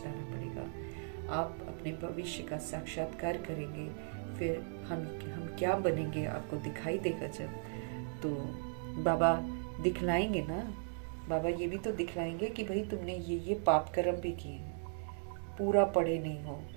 पड़ेगा। आप अपने भविष्य का साक्षात्कार करेंगे, फिर हम क्या बनेंगे आपको दिखाई देगा जब, तो बाबा दिखलाएंगे ना। बाबा ये भी तो दिखलाएंगे कि भाई तुमने ये पाप कर्म भी किए हैं, पूरा पढ़े नहीं हो,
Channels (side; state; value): left; silent; 53 dB below the other